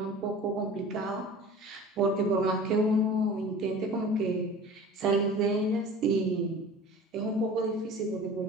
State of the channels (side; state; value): both; normal; correlation 0.40